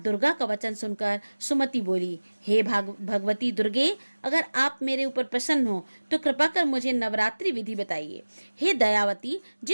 का वचन सुनकर सुमति बोली, हे भगवती दुर्गे, अगर आप मेरे ऊपर प्रसन्न हो तो कृपा कर मुझे नवरात्रि विधि बताइए। हे दयावती,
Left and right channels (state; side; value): inverted; both; correlation -1.00